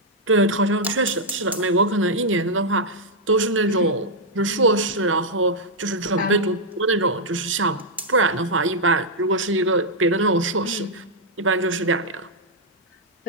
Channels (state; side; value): normal; both; correlation -0.04